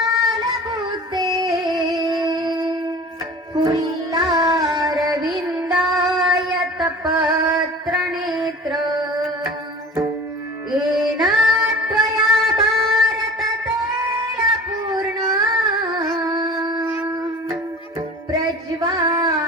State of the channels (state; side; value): normal; both; correlation 0.40